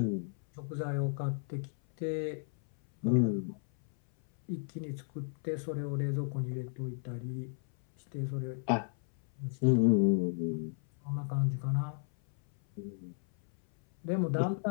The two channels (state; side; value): silent; right; 55 dB below the other